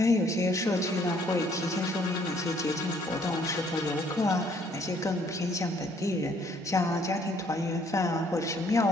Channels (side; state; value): both; normal; correlation 0.64